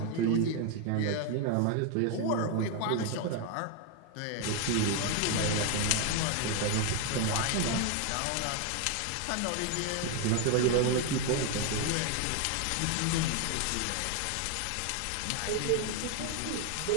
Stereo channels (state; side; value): different; both; correlation 0.01